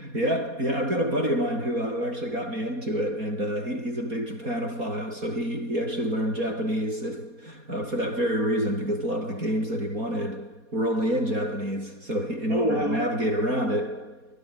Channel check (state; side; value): late; left; 4.2 ms